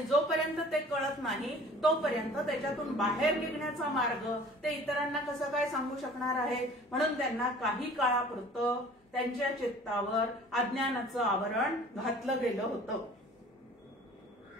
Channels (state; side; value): normal; both; correlation 0.48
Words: जोपर्यंत ते कळत नाही तोपर्यंत त्याच्यातून बाहेर निघण्याचा मार्ग ते इतरांना कसं काय सांगू शकणार आहेत. म्हणून त्यांना काही काळापुरतं त्यांच्या चित्तावर अज्ञानाचं आवरण घातलं गेलं होतं.